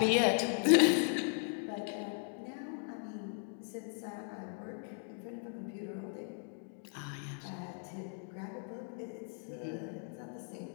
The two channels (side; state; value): right; silent; 53 dB below the other